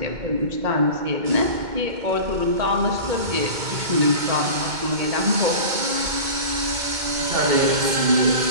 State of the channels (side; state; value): left; late; 2.2 ms